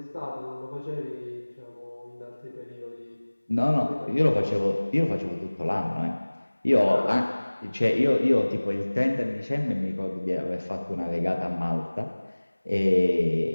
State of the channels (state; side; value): inverted; both; correlation -1.00